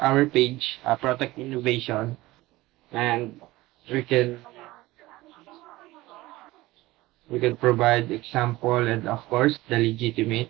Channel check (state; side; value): quieter; left; 18.8 dB